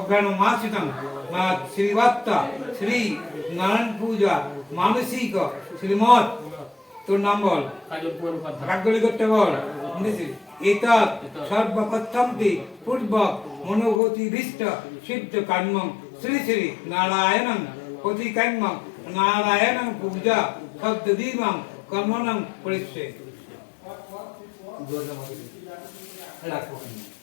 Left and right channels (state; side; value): drops out; right; at 14.0 s